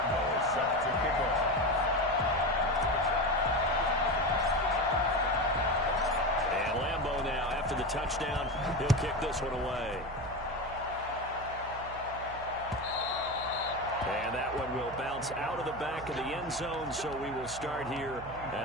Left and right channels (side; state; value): right; noise; hum, 14 dB below the sound